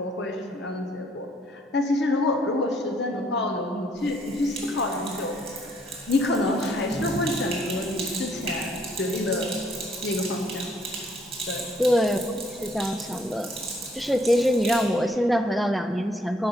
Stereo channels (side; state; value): both; normal; correlation 0.66